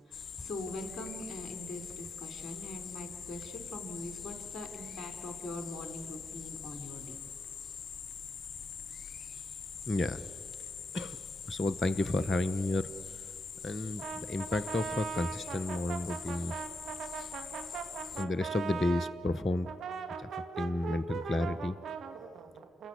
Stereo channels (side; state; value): both; normal; correlation 0.84